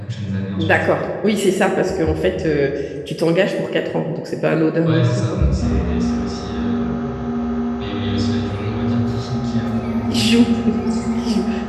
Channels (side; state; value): both; identical; correlation 1.00